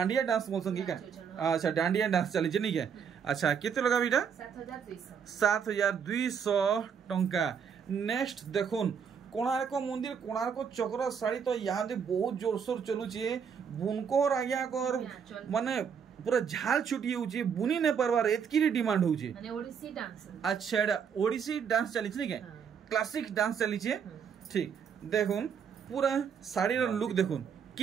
डांस बोलसन की का अच्छा डांडिया डांस चली छै नी के अच्छा केते लगाबी इटा 7200 टंका। नेक्स्ट देखुन कोणार्क मंदिर कोणार्क चक्र साड़ी तो यहाँ दे बहुत जोरसोर चलुचे बुनकोर आज्ञा कर माने पूरा झाल छुटी होची बुनी ने परवार एतकी डिमांड होची माने ओडिसी डांस। अच्छा एटा ओडिसी डांस चली छै के क्लासिक डांस चली छै ठीक देखुन पूरा साड़ी रो लुक देखुन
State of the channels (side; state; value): left; quieter; 7.1 dB